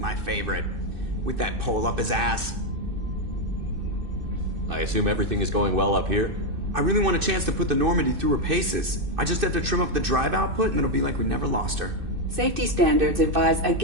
favorite. With that pole up his ass. I assume everything is going well up here? I really want a chance to put the Normandy through her paces. I just have to trim up the drive output and it'll be like we never lost her. Safety standards advise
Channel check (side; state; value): left; late; 2.6 ms